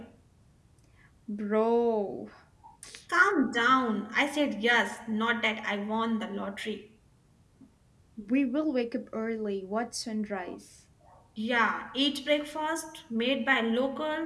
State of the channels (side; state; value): both; identical; correlation 1.00